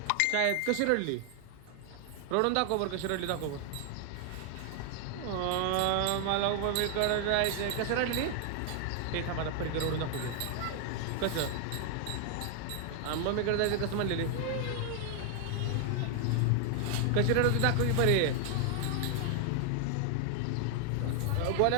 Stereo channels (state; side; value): different; both; correlation 0.00